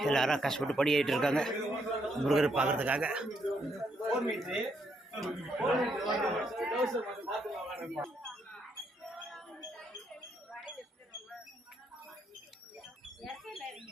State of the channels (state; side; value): normal; both; correlation 0.75